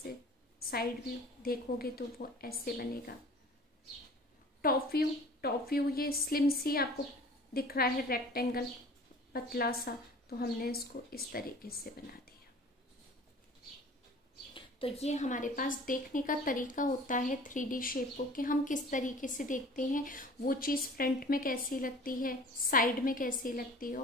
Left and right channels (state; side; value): normal; both; correlation 0.45